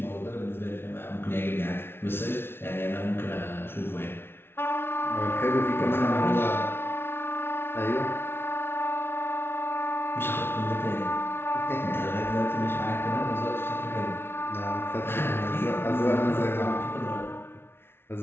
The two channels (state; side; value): late; right; 0.11 ms